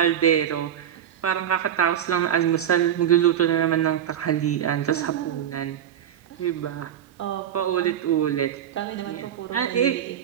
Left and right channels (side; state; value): left; quieter; 9.8 dB